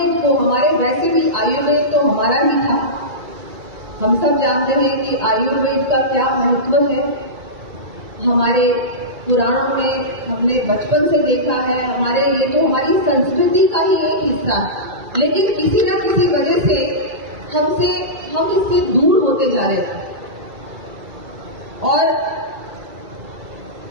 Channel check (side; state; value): left; late; 2.3 ms